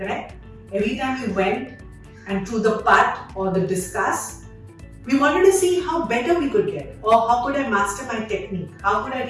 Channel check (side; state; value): both; identical; correlation 1.00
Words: Every time we went and through the putt or the discus, we wanted to see how better we could get, or how could I master my technique, how could I